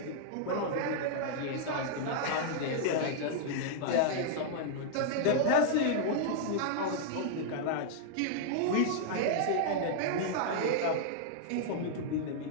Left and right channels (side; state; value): both; different; correlation -0.01